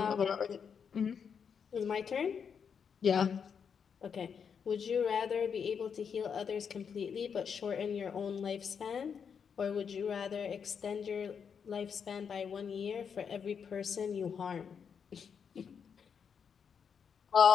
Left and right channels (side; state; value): right; quieter; 6.8 dB